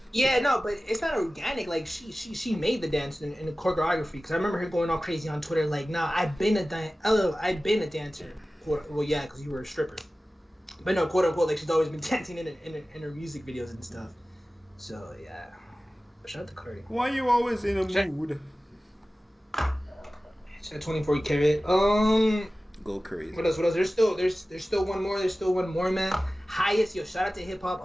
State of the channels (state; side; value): normal; both; correlation 0.96